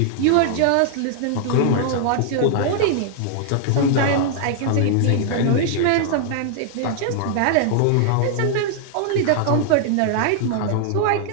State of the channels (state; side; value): different; both; correlation 0.00